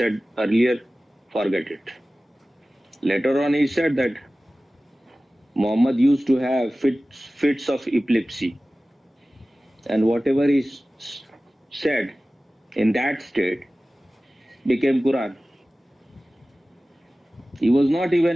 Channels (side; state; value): both; normal; correlation 0.96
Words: earlier, forget it. Later on he said that Muhammad used to have fits of epilepsy, and whatever he said in that state became Quran. He was not